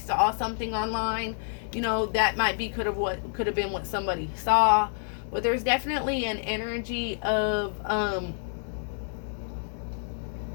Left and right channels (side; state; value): right; silent; 59 dB below the other